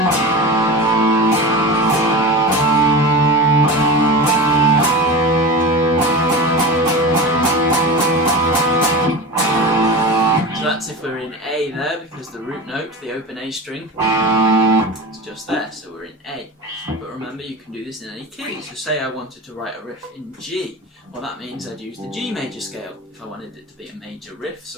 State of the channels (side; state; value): both; normal; correlation 0.27